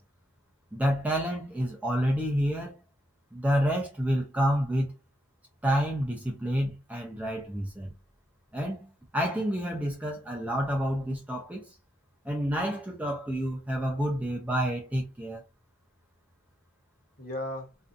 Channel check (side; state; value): both; normal; correlation 0.82